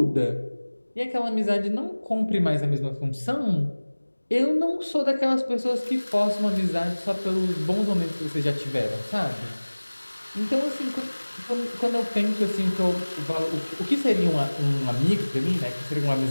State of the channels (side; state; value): both; inverted; correlation -1.00